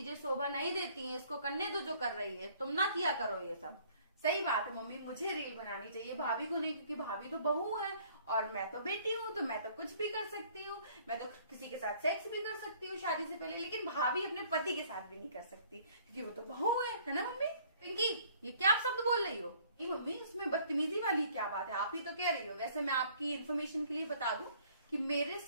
शोभा नहीं देती हैं, इसको करने दो जो कर रही है, तुम ना किया करो ये सब। सही बात है मम्मी, मुझे रील बनानी चाहिए, भाभी को नहीं, क्योंकि भाभी तो बहू है और मैं तो बेटी हूँ, तो मैं तो कुछ भी कर सकती हूँ। मैं तो किसी के साथ सेक्स भी कर सकती हूँ शादी से पहले, लेकिन भाभी अपने पति के साथ भी नहीं कर सकती, क्योंकि वो तो बहू है ना मम्मी? पिंकी, ये क्या आप शब्द बोल रही हो? नहीं मम्मी, उसमें बदतमीजी वाली क्या बात है, आप ही तो कह रही हो। वैसे मैं आपकी इन्फॉर्मेशन के लिए बता दूं कि मेरे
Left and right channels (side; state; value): both; inverted; correlation -0.58